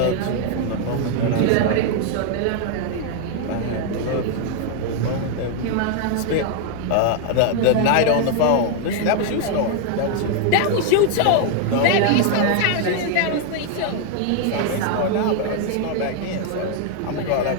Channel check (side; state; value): both; different; correlation 0.00